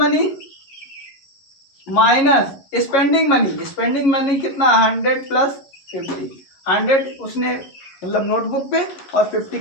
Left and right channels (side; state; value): right; late; 11 ms